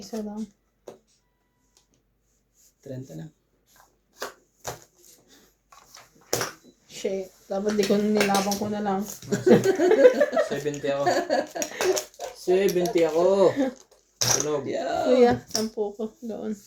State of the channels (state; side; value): identical; both; correlation 1.00